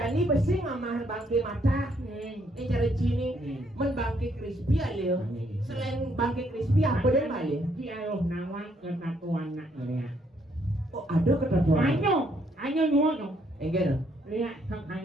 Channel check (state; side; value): normal; both; correlation 0.70